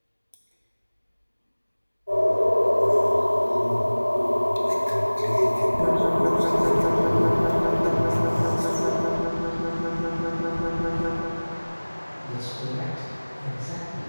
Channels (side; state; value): both; inverted; correlation -1.00